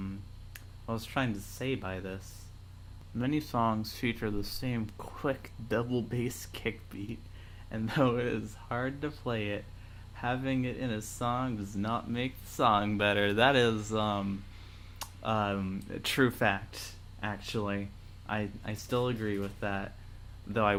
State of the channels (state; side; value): identical; both; correlation 1.00